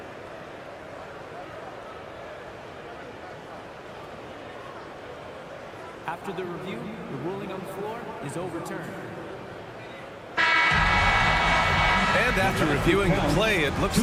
After the review, the ruling on the floor is overturned. And after reviewing the play, it looks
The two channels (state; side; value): identical; both; correlation 1.00